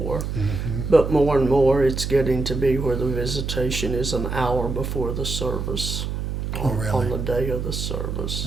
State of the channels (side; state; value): right; noise; hum, 3 dB below the sound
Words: Mm-hmm. But more and more, it's getting to be where the visitation is an hour before the service. Oh, really? On the day of the service.